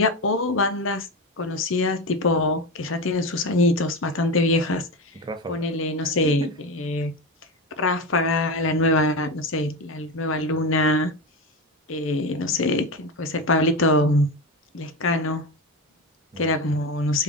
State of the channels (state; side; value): normal; both; correlation 0.19